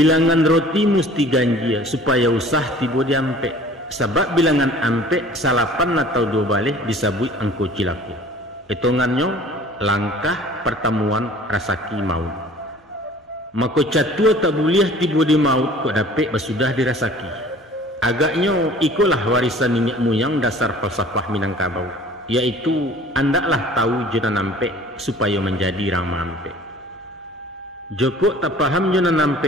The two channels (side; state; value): both; normal; correlation 0.48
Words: roti mesti ganjia supaya usah tiba diampek. Sebab bilangan ampek salapan atau 2 balik disabut angko cilaku. Hitungannya langkah pertemuan rasaki maut. Maka catua tak boleh tiba di maut kok dapat basudah dirasaki. Agaknya ikulah warisan nenek moyang dasar falsafah Minangkabau, yaitu andaklah tahu jena nampek supaya menjadi rama ampek. Joko tak paham jena